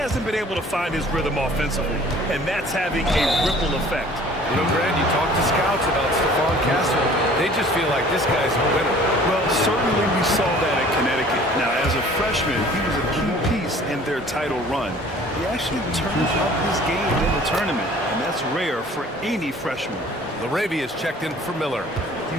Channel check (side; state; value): both; normal; correlation 0.50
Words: been able to find his rhythm offensively, and that's having a ripple effect. You know, Grant, you talk to scouts about Stephon Castle. They just feel like this guy's a winner. Well, certainly we saw that at Connecticut. Now, as a freshman, he was a key piece in their title run. He actually turned up his game in the tournament, and that's rare for any freshman. LaRavia is checked in for Miller.